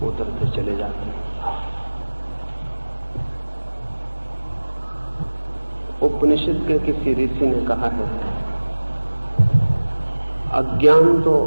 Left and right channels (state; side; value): inverted; both; correlation -1.00